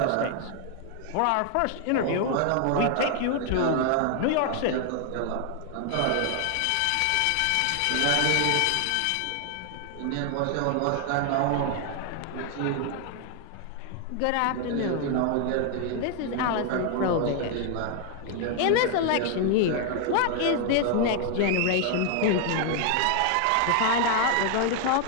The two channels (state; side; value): different; both; correlation 0.00